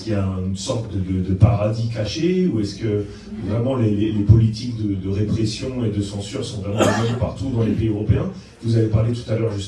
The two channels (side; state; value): both; identical; correlation 1.00